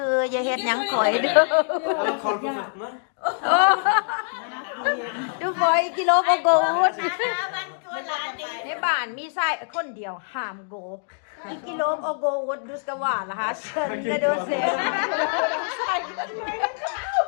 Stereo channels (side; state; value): right; silent; digital silence